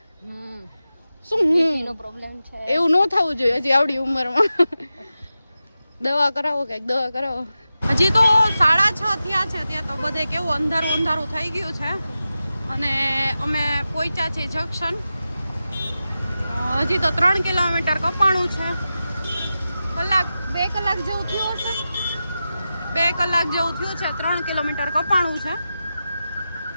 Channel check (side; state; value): both; inverted; correlation -0.92